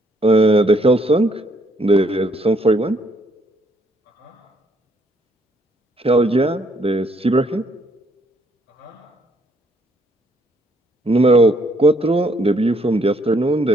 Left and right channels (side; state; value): both; normal; correlation 0.69